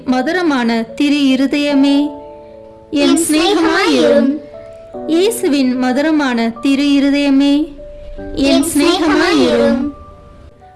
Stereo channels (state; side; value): identical; both; correlation 1.00